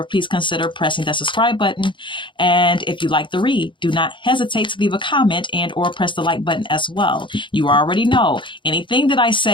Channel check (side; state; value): right; late; 0.24 ms